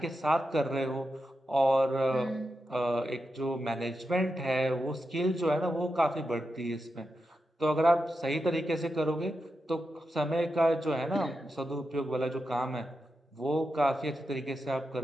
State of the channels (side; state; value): both; normal; correlation 0.88